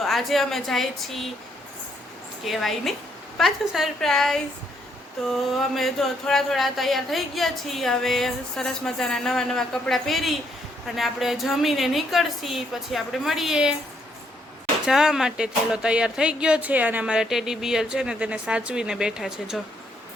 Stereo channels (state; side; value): normal; both; correlation 0.72